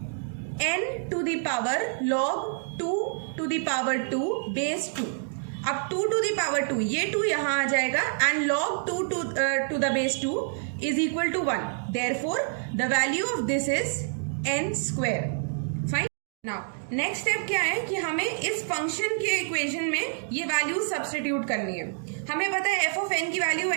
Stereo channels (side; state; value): left; silent; digital silence